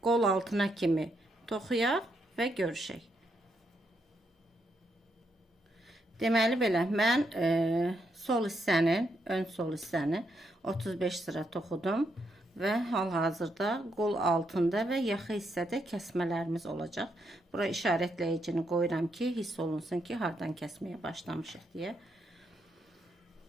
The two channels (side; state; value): both; normal; correlation 0.79